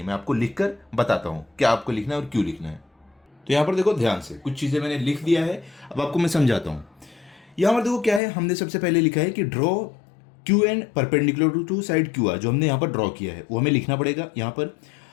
मैं आपको लिखकर बताता हूं क्या आपको लिखना है और क्यों लिखना है। तो यहां पर देखो ध्यान से, कुछ चीजें मैंने लिख दिया है, अब आपको मैं समझाता हूं। यहां पर देखो क्या है, हमने सबसे पहले लिखा है कि draw QN perpendicular to side QR। जो हमने यहाँ पर ड्रॉ किया है वो हमें लिखना पड़ेगा यहाँ पर।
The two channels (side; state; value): right; drops out; at 8.2 s